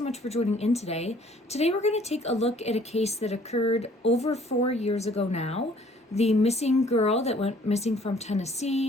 much for joining in today. Today we're going to take a look at a case that occurred over 4 years ago now. The missing girl that went missing from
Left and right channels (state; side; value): normal; both; correlation 0.57